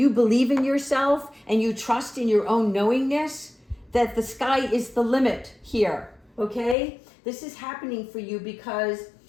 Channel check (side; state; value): right; drops out; at 6.8 s